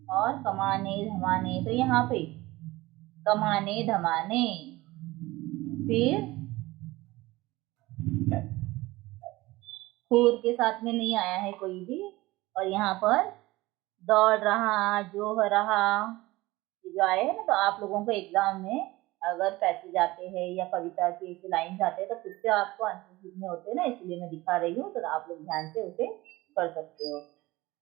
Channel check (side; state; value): left; quieter; 19.6 dB